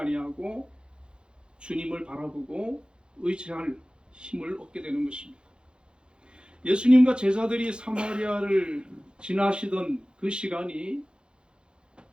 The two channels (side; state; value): left; late; 0.052 ms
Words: 주님을 바라보고 의지할 힘을 얻게 되는 것입니다. 예수님과 제자들이 사마리아를 지나시던 그 시간이